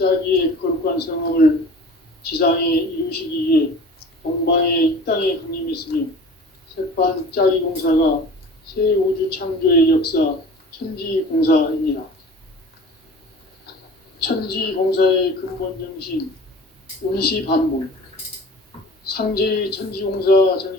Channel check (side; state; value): both; normal; correlation 0.41